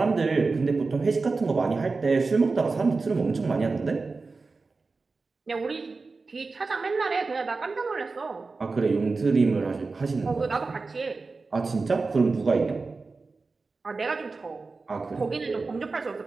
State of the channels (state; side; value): quieter; left; 4.0 dB